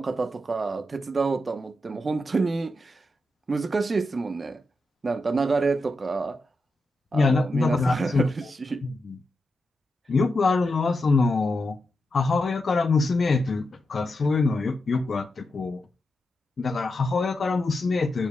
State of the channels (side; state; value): both; normal; correlation 0.87